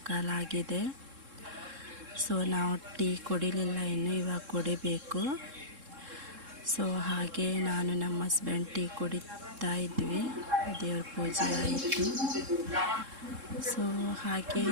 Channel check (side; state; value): left; late; 3.7 ms